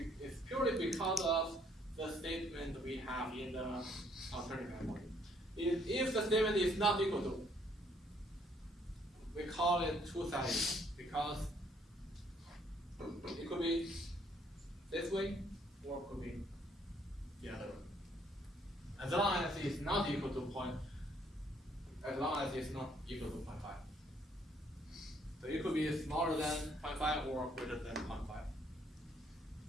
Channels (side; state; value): both; normal; correlation 0.66